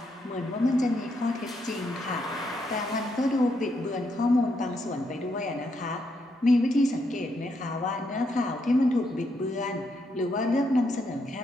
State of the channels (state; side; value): normal; both; correlation 0.78